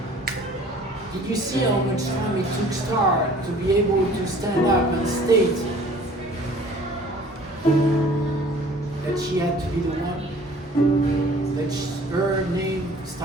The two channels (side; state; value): both; normal; correlation 0.50